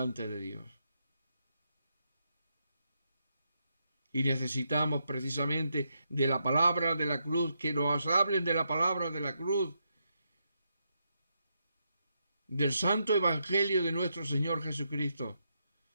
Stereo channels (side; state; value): both; inverted; correlation -0.82